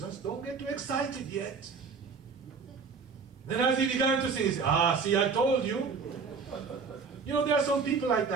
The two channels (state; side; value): quieter; left; 5.2 dB